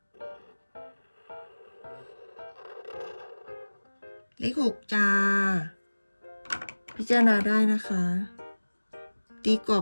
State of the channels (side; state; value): both; inverted; correlation -1.00